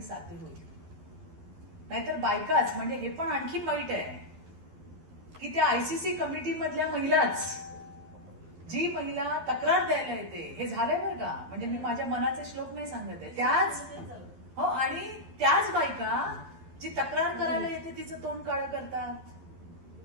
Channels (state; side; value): late; left; 12 ms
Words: साध्य होईल. नाहीतर बायकाच, म्हणजे हे पण आणखी वाईट आहे की त्या आयसीसी कमिटी मधल्या महिलाच, जी महिला तक्रार द्यायला येते, हे झालंय बरं का, म्हणजे मी माझ्या मनाचे श्लोक नाही सांगत आहे, त्याच हो, आणि त्याच बायका जी तक्रार करायला येते तिचं तोंड काळं